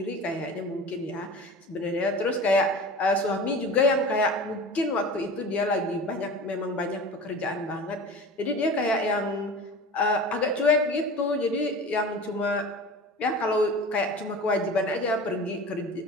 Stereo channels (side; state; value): both; normal; correlation 0.35